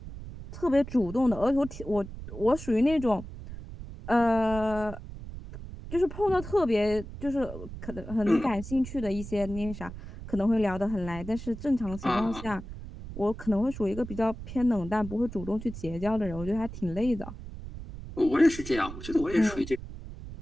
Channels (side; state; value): right; noise; rumble, 11 dB below the sound